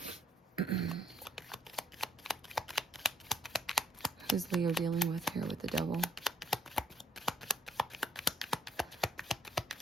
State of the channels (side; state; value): both; normal; correlation 0.67